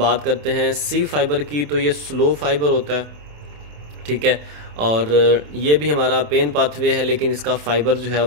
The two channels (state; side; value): late; left; 27 ms